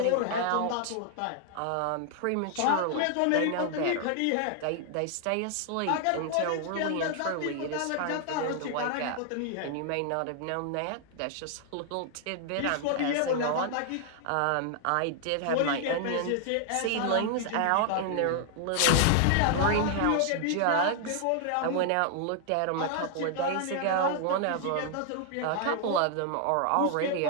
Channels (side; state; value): both; different; correlation 0.00